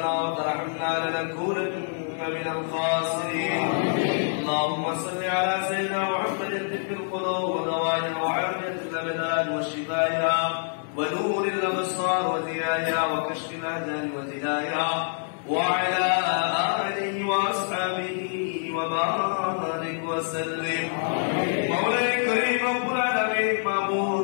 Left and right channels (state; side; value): silent; right; digital silence